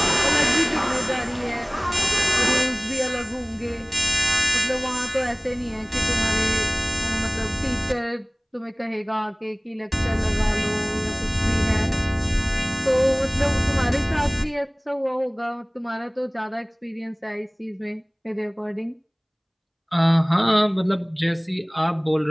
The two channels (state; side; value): identical; both; correlation 1.00